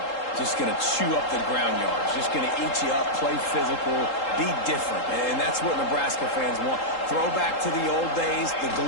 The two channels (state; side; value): late; right; 3.8 ms